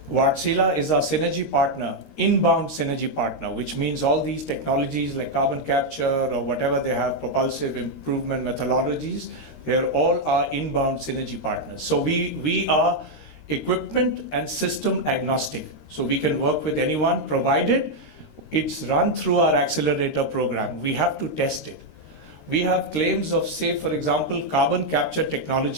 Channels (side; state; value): right; late; 13 ms